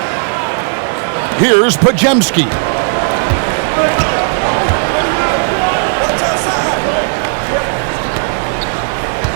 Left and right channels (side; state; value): left; silent; digital silence